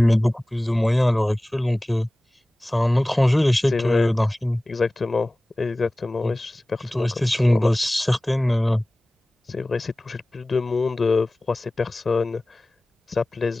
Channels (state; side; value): normal; both; correlation 0.98